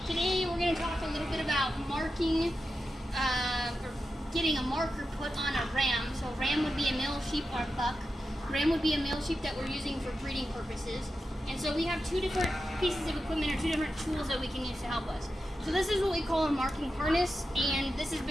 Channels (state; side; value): normal; both; correlation 0.90